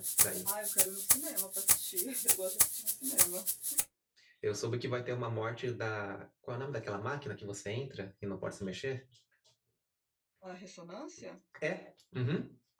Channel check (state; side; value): identical; both; correlation 1.00